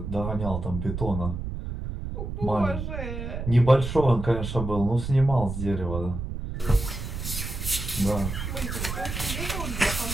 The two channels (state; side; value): noise; right; rumble, 5 dB below the sound